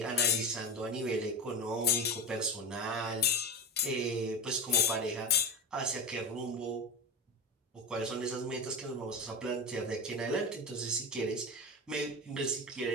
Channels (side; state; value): both; normal; correlation 0.21